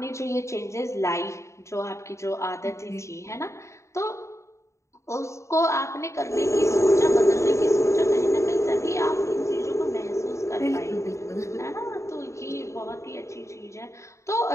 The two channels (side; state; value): right; late; 0.14 ms